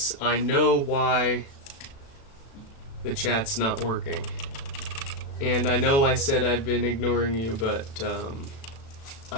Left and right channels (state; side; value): late; right; 36 ms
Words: I know why the chat's not working. And I know I said I've been ignoring you, but